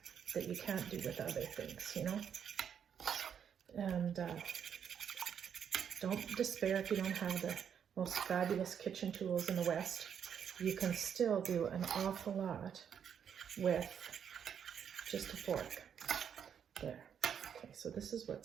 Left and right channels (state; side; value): quieter; left; 8.1 dB